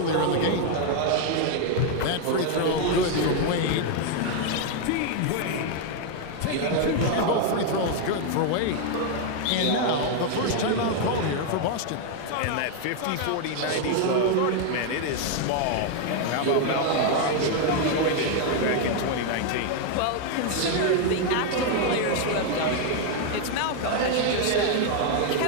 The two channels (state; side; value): different; both; correlation 0.00